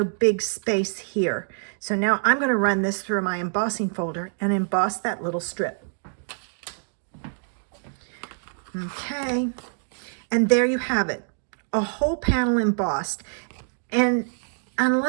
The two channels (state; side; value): silent; left; digital silence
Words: big space here. So now I'm going to run this through my embossing folder and emboss that little strip. Okay, and there you have it, a whole panel embossed. And